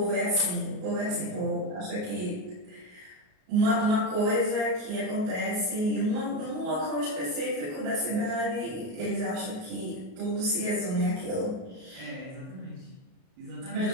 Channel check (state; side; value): late; left; 38 ms